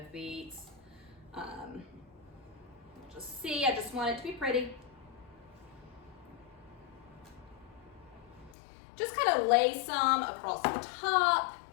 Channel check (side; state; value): right; drops out; at 8.6 s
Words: beets. Just see, I just want it to be pretty. Just kind of lay some across the top.